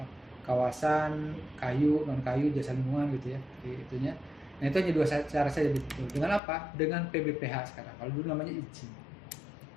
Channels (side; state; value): right; drops out; at 6.4 s